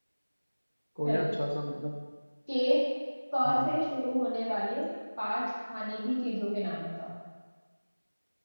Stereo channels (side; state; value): both; inverted; correlation -1.00